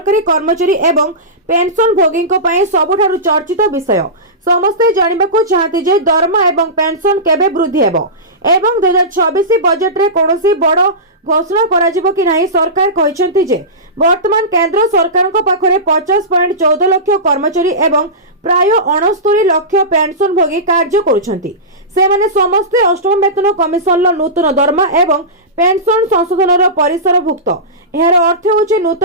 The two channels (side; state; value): both; normal; correlation -0.19